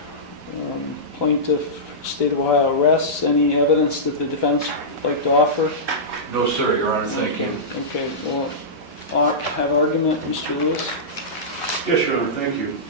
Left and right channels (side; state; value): both; normal; correlation -0.16